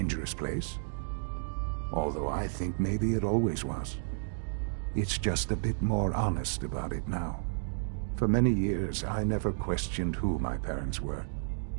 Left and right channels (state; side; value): silent; left; digital silence